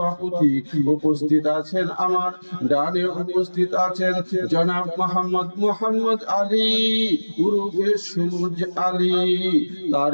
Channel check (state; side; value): inverted; both; correlation -1.00